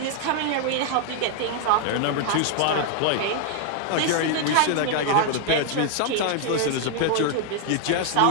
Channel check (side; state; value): both; different; correlation 0.00